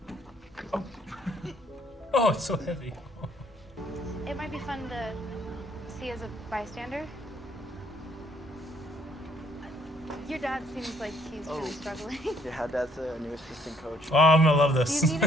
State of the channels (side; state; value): both; normal; correlation 0.65